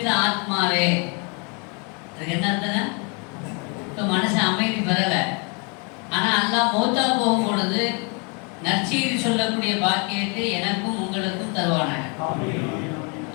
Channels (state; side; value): quieter; right; 34.4 dB